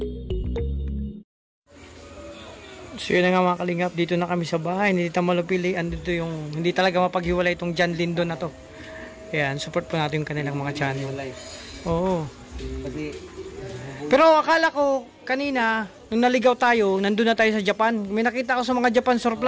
So yun na nga mga kalingap, dito na kami sa bahay ni Tita Malupili. Andito yung hindi talaga mapaghiwalay itong John Lindo na to. Ayan, support po natin yung kanilang mga channel. Oo. Pero akala ko kanina, nung naligaw tayo, nandun na tayo sa Japan. May nakita ko sa mga Japan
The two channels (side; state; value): both; identical; correlation 1.00